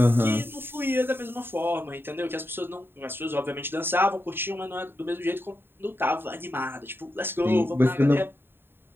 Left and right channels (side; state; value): left; late; 0.10 ms